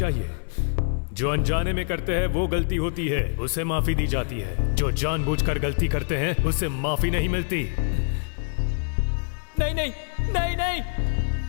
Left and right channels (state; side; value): silent; right; 59 dB below the other